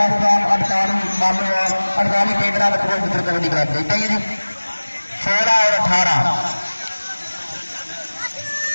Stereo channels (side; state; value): both; inverted; correlation -1.00